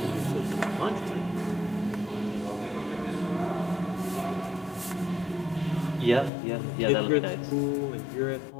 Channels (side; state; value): right; drops out; at 6.3 s